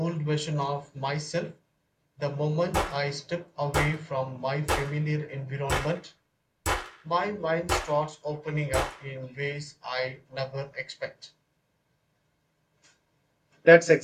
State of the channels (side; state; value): both; identical; correlation 1.00